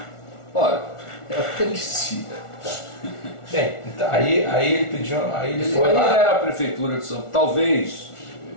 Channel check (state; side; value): late; right; 1.4 ms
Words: Olha, é o que ele dizia. Bem, então, aí ele pediu, ele foi lá. lá. Era a Prefeitura de São Paulo, talvez